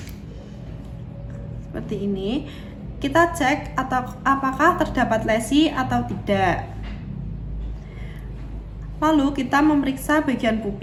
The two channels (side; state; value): both; identical; correlation 1.00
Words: Seperti ini. Kita cek apakah terdapat lesi atau tidak. Lalu kita memeriksa bagian